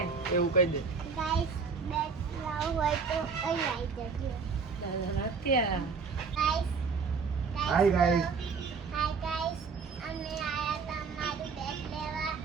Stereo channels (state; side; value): quieter; left; 5.3 dB